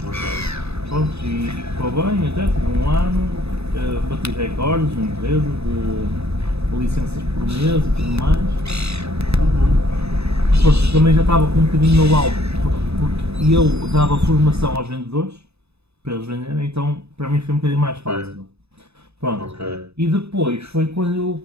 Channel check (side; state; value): left; late; 0.79 ms